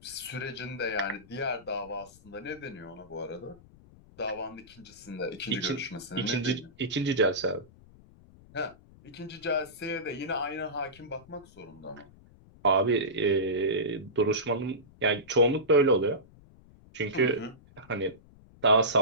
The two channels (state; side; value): noise; left; rumble, 24 dB below the sound